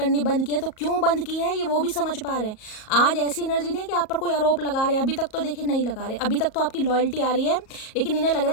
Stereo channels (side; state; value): right; late; 37 ms